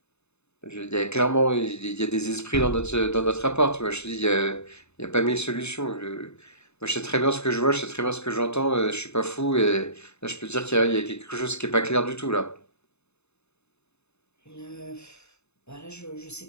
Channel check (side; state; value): right; late; 0.81 ms